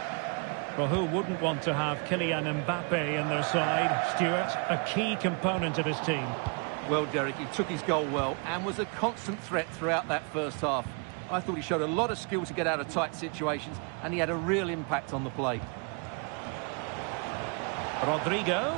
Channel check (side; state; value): left; quieter; 35.4 dB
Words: Well, who wouldn't want to have Kylian Mbappe in their side? Stuart, a key component of his team. Well, Derek, he took his goal well and was a constant threat throughout that first half. I thought he showed a lot of skill to get out of tight situations, and he had a real impact on the play. Rodrigo.